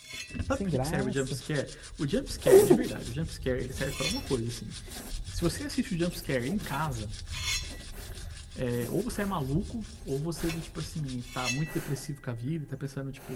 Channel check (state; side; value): identical; both; correlation 1.00